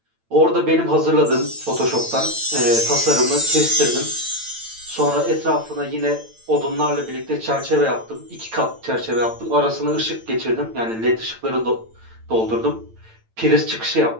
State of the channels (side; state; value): left; late; 8.9 ms